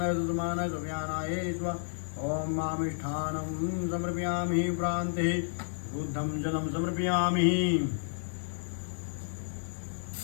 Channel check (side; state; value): right; silent; digital silence